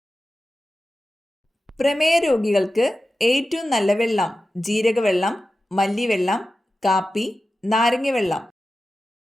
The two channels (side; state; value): both; normal; correlation 0.93